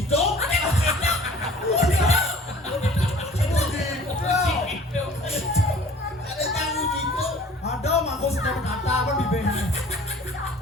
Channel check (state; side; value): normal; both; correlation 0.49